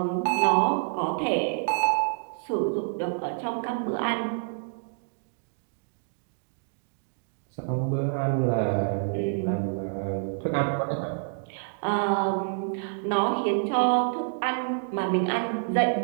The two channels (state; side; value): silent; left; digital silence